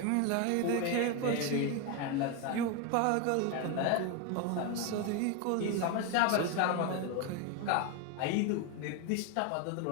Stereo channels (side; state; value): both; different; correlation 0.02